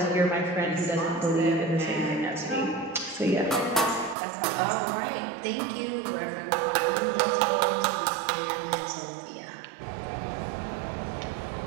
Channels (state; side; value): drops out; left; at 4.2 s